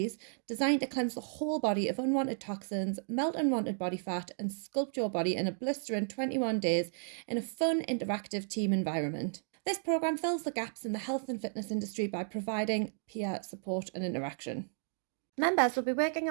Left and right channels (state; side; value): silent; left; digital silence